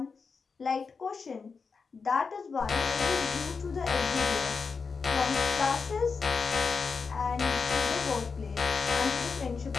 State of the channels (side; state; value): right; quieter; 5.1 dB